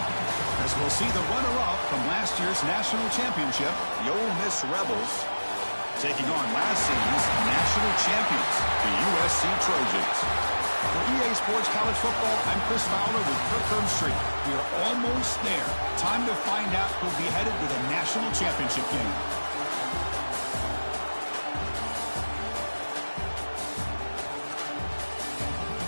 As we'll see the runner-up from last year's national championship, the Ole Miss Rebels, taking on last season's national champions, the USC Trojans. For EA Sports College Football, I'm Chris Fowler with Kirk Herbstreit. We are almost there. Time to find out who'll be headed to the national championship game.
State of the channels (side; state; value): both; inverted; correlation -1.00